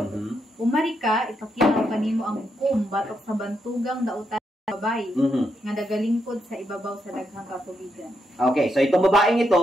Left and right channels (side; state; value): both; normal; correlation 0.81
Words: Umari ka ipakita ko kanimo ang hukom batok sa bantugang dautan sa babae nga nagalingkod sa ibabaw sa daghang katubigan. Okay, so itong babaeng